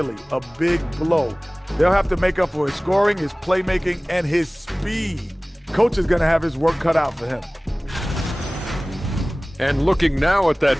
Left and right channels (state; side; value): normal; both; correlation 0.98